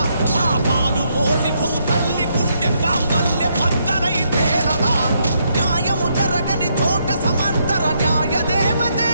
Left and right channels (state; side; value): inverted; both; correlation -0.75